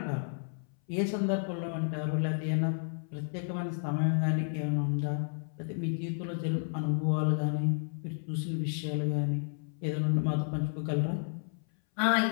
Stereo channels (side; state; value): right; silent; 57 dB below the other